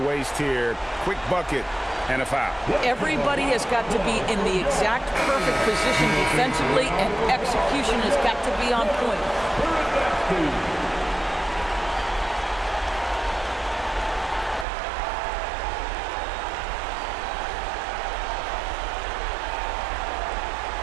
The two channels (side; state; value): left; drops out; at 14.7 s